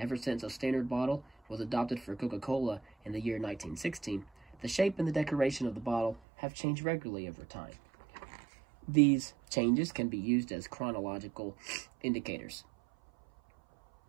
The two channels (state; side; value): drops out; left; at 6.2 s